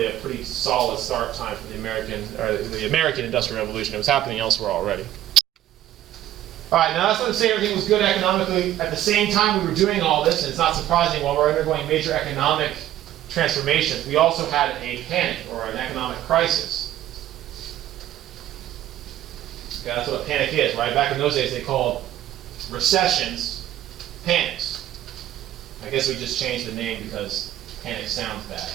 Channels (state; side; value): quieter; left; 12.9 dB